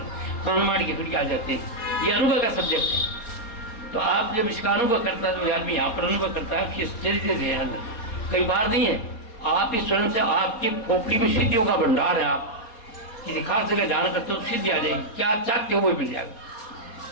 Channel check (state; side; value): late; right; 4.3 ms